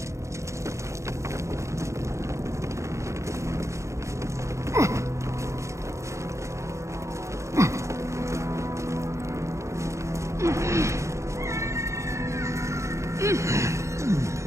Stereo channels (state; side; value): late; left; 0.14 ms